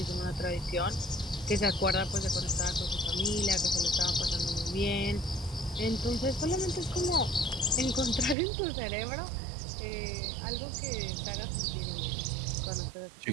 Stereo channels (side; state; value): left; drops out; at 8.3 s